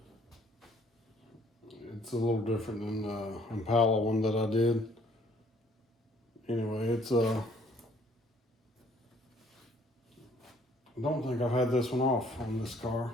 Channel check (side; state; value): both; normal; correlation 0.60